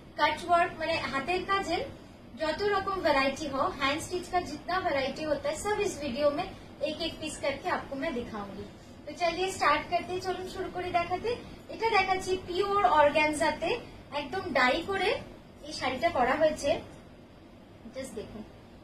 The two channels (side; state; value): both; identical; correlation 1.00